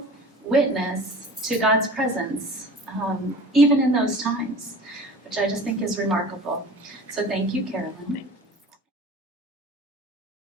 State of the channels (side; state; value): both; normal; correlation 0.40